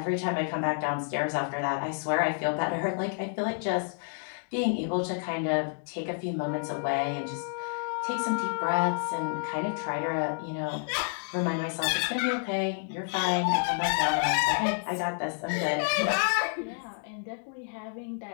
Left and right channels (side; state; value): right; silent; 58 dB below the other